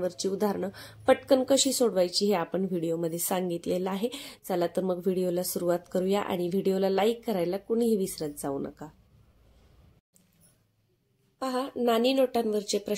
उदाहरणं पटकन कशी सोडवायची हे आपण व्हिडिओमध्ये सांगितलेलं आहे। चला तर मग व्हिडिओला सुरुवात करूया आणि व्हिडिओला लाईक करायला कुणीही विसरत जाऊ नका। पहा, नाणी नोटांवरचे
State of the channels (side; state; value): both; identical; correlation 1.00